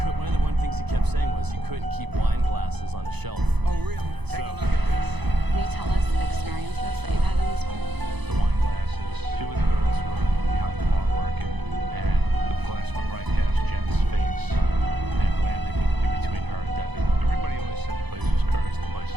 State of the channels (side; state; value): left; late; 0.99 ms